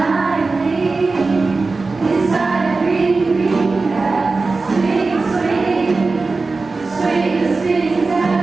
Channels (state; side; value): quieter; left; 3.8 dB